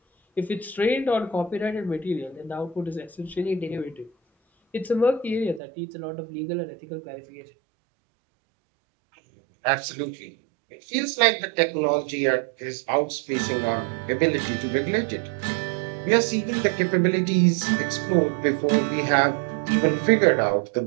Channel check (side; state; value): left; drops out; at 5.6 s